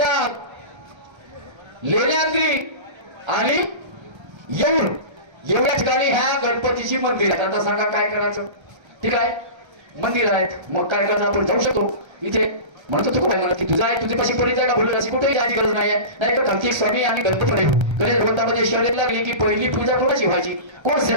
लेण्याद्री आणि येऊर एवढ्या ठिकाणी ह्या गणपतीची मंदिर आहेत आता सांगा काय करायचं ठीक आहे मंदिर आहेत मग काय करायचं आपण जाऊ शकतो इथे म्हणतो तू काय मला की तुझा आहे तुझी पाशी परिचय का बोलू अशी कुठेही जायची गरज नाहीये नाही का कार्तिक स्वामी आणि गणपती गणेश भगवंतामध्ये शर्यत लागली की पहिली पूजा कोणाची व्हायची कोण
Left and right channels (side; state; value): left; late; 1.3 ms